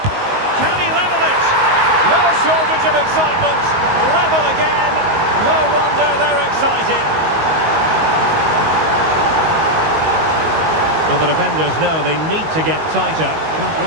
Can he level it? No shortage of excitement. Level again. No wonder they're excited. Well, the defenders know they need to get tighter. Can't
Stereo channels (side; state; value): left; late; 19 ms